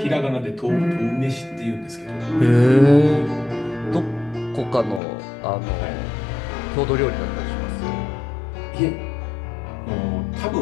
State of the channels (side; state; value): right; drops out; at 5.0 s